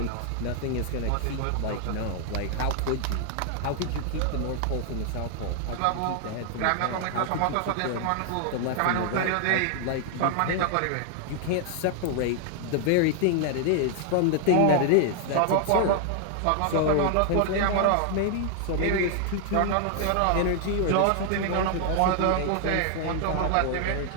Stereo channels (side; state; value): both; different; correlation 0.00